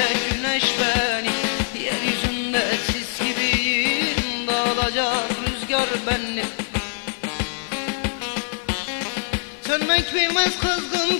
güneş beni. Yeryüzünde sis gibiyim, dağılacak rüzgar beni. Sönmek bilmez kızgın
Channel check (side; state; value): right; silent; 60 dB below the other